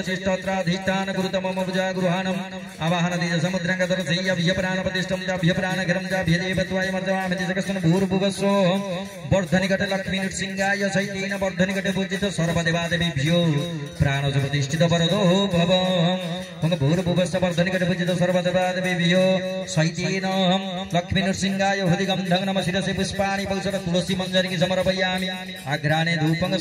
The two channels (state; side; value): identical; both; correlation 1.00